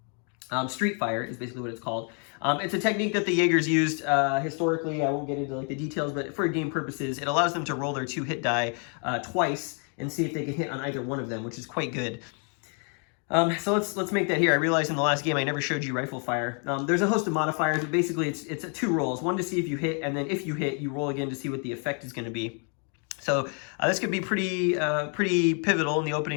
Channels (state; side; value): quieter; right; 39.9 dB